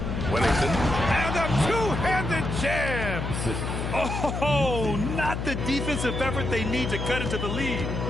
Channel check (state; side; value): noise; left; hum, 3 dB below the sound